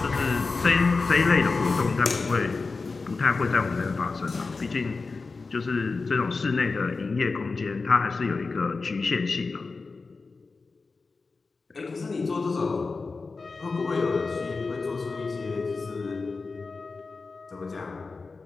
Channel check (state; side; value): quieter; right; 4.1 dB